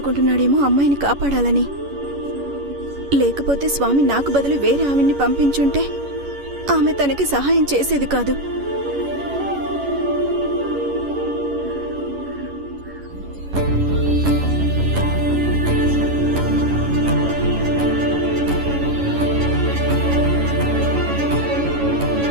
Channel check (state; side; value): late; left; 11 ms